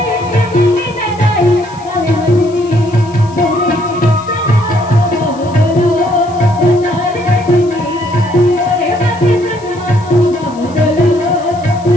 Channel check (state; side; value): noise; left; hiss, 24 dB below the sound